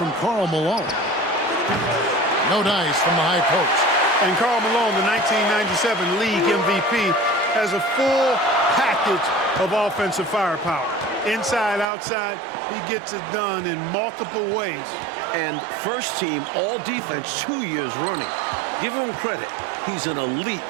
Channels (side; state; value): left; drops out; at 11.9 s